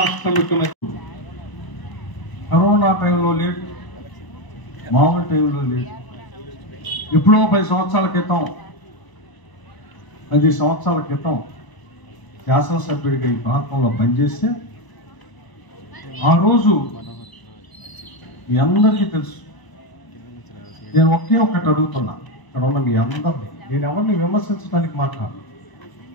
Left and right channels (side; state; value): right; late; 1.0 ms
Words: ముఖ్యమంత్రి. కరోనా టైంలో లేదు, మామూలు టైంలో లేదు. ఎప్పుడో 10 సంవత్సరాల క్రితం, 10 సంవత్సరాల క్రితం శాసనసభ్యుడిగా ఈ ప్రాంతంలో పనిచేస్తే, ఆ రోజు మీ అందరికీ తెలుసు. నేను ఒకే ఒక్కటి అడుగుతున్నా, ఇక్కడ ఉన్న మీ అందరినీ. నేను ఎవరిని విమర్శించడానికి మాట్లాడు,